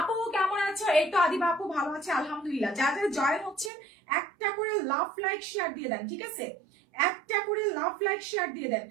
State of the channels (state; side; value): drops out; left; at 3.7 s